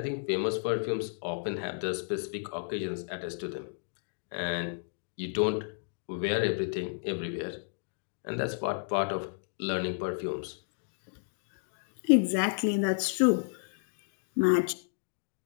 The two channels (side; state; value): right; silent; digital silence